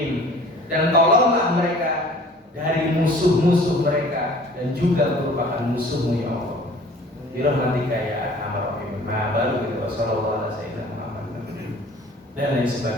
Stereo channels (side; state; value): both; normal; correlation 0.49